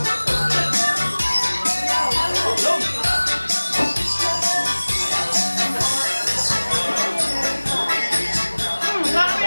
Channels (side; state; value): both; inverted; correlation -1.00